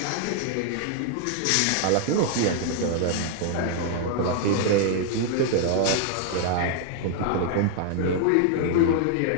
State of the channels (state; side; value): different; both; correlation 0.00